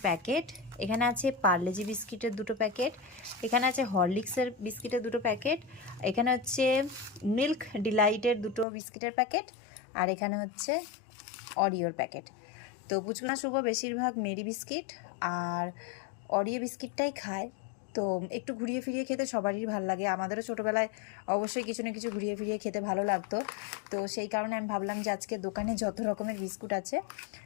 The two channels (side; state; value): right; drops out; at 8.7 s